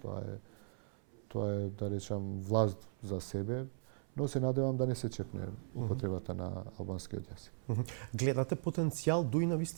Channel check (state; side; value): silent; left; 52 dB below the other